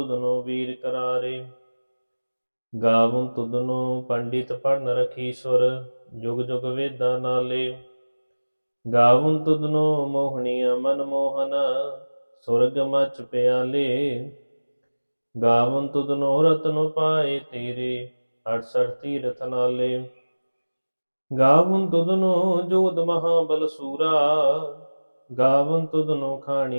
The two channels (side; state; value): both; inverted; correlation -1.00